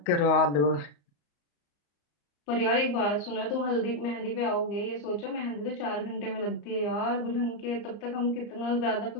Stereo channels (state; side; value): late; right; 34 ms